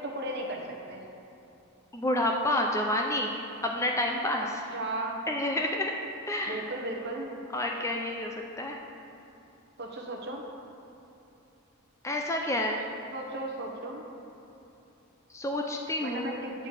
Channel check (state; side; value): normal; both; correlation 0.13